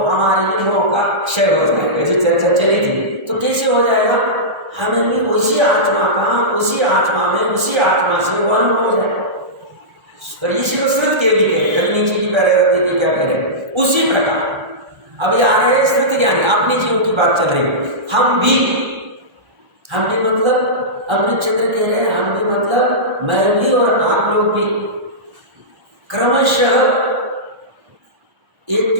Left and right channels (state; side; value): late; left; 1.3 ms